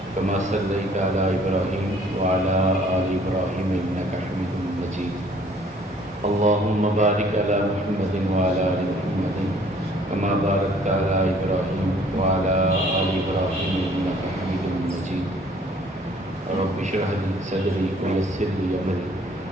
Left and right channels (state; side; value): normal; both; correlation 0.57